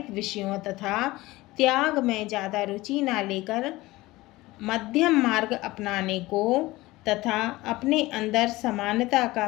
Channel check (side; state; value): right; quieter; 19.3 dB